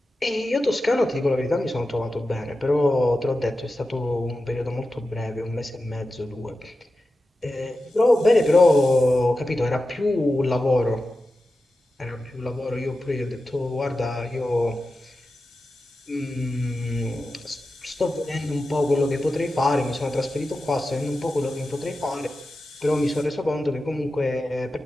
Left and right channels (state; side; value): normal; both; correlation 0.92